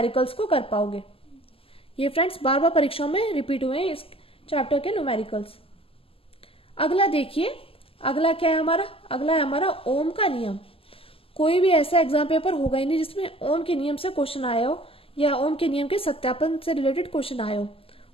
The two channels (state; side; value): late; right; 0.27 ms